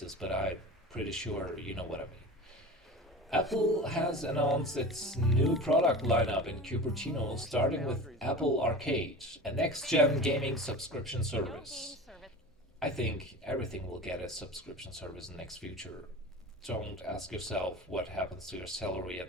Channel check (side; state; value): both; normal; correlation 0.33